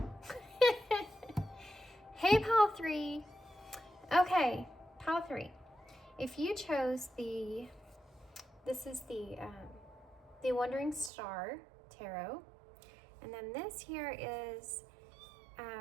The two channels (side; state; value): left; drops out; at 11.1 s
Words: Hey, Pile 3. Okay, Pile 3. If you chose this is the Wandering Star Tarot, and then this here is